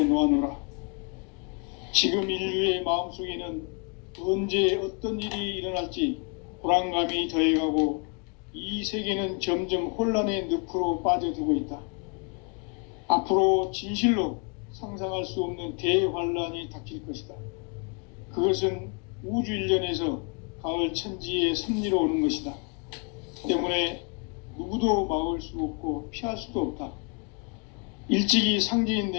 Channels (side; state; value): right; quieter; 36.7 dB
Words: 지금 인류의 마음속에는 언제 어떤 일이 일어날지 불안감이 더해가고 이 세계는 점점 혼란의 늪으로 빠져들고 있다. 앞으로 진실로 상상할 수 없는 대환란이 닥칠 것이다. 그것은 우주 일련에서 가을 천지의 섭리로 오는 것이다. 때문에 누구도 막을 수 없고 피할 수도 없다. 일찍이 상제인